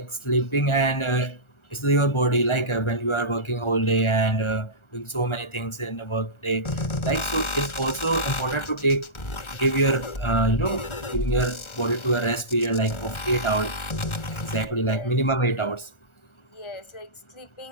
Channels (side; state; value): right; late; 1.4 ms